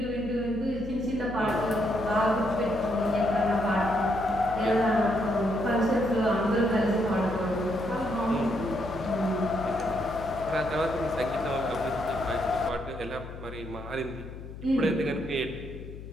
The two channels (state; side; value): noise; left; hum, 12 dB below the sound